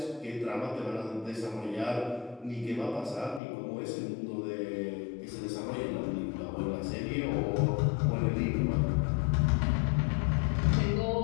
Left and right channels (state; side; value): drops out; right; at 3.4 s